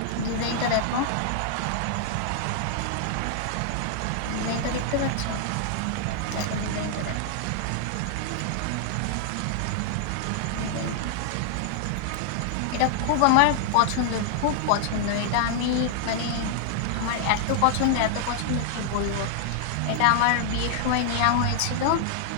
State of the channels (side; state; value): both; different; correlation -0.01